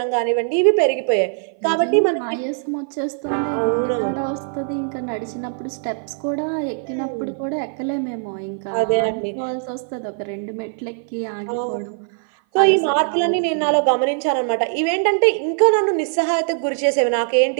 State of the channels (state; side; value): silent; left; 57 dB below the other